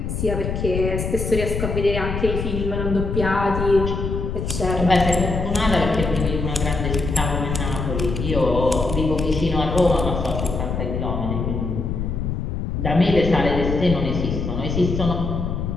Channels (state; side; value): noise; left; rumble, 3 dB below the sound